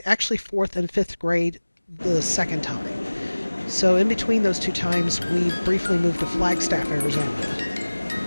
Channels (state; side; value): inverted; both; correlation -1.00